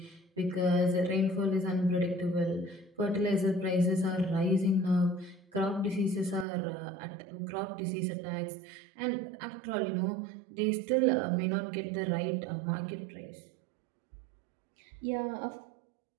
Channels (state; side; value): drops out; left; at 6.5 s